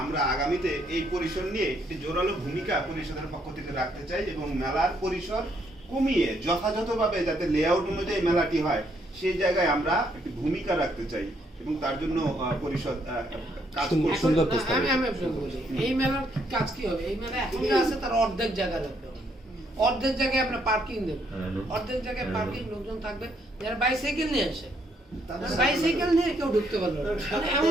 আমরা আগামীতে এই পরিসর নিয়ে একটি জোরালো ভূমিকা পরিষদের পক্ষ থেকে রাখতে চাই, এবং মেলার পরিসর কমিয়ে যথাযথভাবে যাতে লেআউট অনুযায়ী মেলাটি হয়, সেই জায়গায় আমরা একটি ভূমিকা রাখতে চাই, এবং তার জন্য পরিষদ কাজ করছে। এই মেলার কাজ কি হবে, এই মেলা এখন যা আছে তার অর্ধেক জায়গা রাখবে, অর্ধেক জায়গায় আমরা পার্কিং দেবো, অর্ধেক জায়গায় পার্কিং লোকজন থাকবে যারা বাইসাইকেল নিয়ে আসে, বাইসাইকেল নিয়ে কেউ ঢুকতে পারলো না।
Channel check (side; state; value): both; normal; correlation 0.72